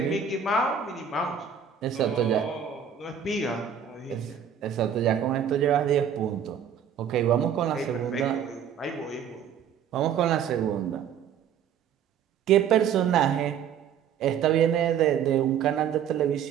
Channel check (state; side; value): quieter; left; 8.1 dB